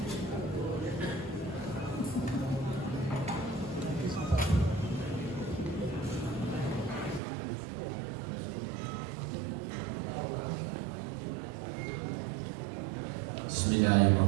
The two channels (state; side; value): drops out; left; at 7.2 s